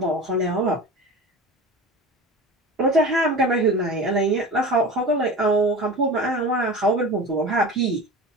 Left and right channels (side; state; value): both; normal; correlation 0.33